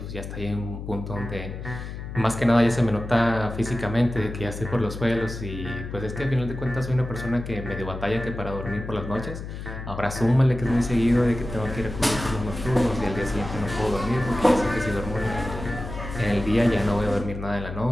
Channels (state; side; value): noise; left; hum, 8 dB below the sound